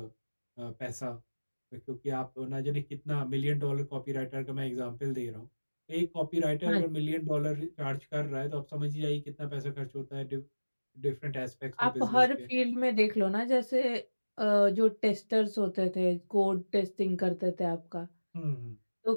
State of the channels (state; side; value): inverted; both; correlation -1.00